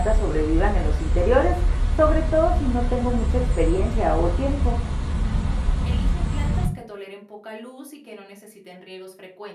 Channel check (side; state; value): both; identical; correlation 1.00